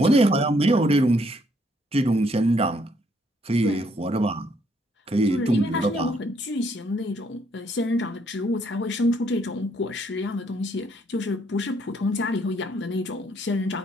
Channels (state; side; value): normal; both; correlation 0.69